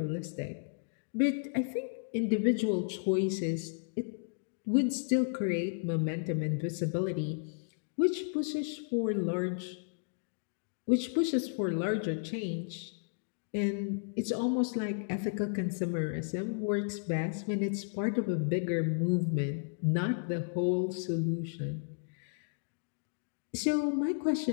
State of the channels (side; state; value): right; silent; digital silence